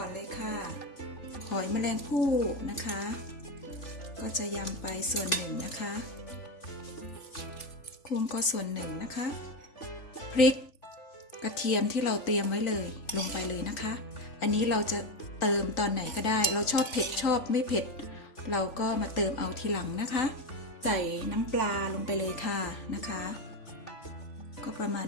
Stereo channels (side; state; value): right; late; 3.5 ms